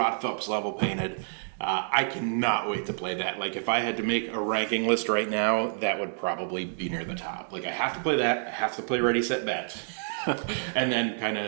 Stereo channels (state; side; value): silent; left; digital silence